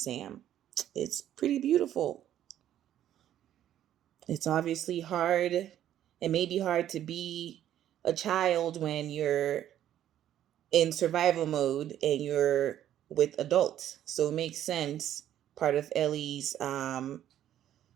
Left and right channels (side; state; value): left; quieter; 11.4 dB